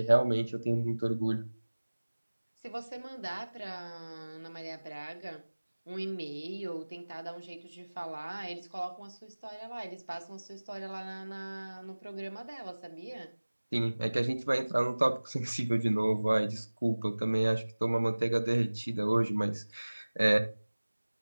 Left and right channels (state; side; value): inverted; both; correlation -1.00